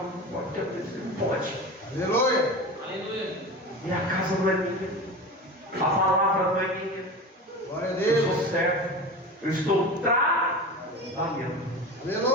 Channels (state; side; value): normal; both; correlation 0.30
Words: pode, não pode. Aleluia. Aleluia. E a casa não é minha. A palavra não é minha. Glória a Eu Deus. sou servo. Eu estou trabalhando.